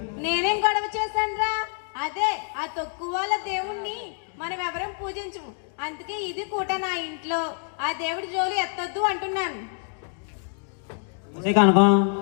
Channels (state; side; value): silent; right; 55 dB below the other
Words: నేనేం గొడవ చేశానురా? అదే ఆ తక్కువ వాళ్ళ దేవుణ్ణి మనం ఎవరం పూజించము. అందుకే ఇది కూడా నా ఇంట్లో ఆ దేవుడి జోలి ఎత్తొద్దు అంటున్నాను. కనుకం